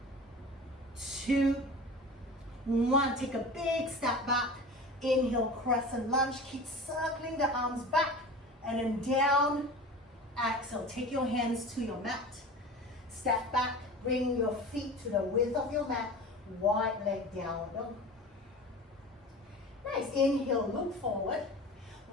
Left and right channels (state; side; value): normal; both; correlation 0.35